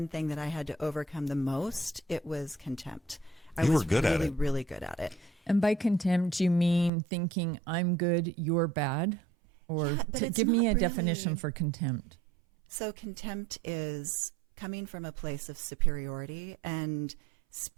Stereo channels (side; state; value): left; drops out; at 6.9 s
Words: thing that I had to overcome the most, it was contempt. I You were was good at really, it. really good at it. And by contempt, you mean thinking I'm good, you're bad? Or Yeah, but it's give me not a definition really. for contempt. So contempt is coming from a place of superiority and